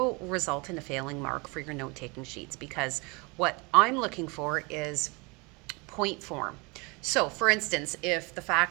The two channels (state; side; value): quieter; left; 28.1 dB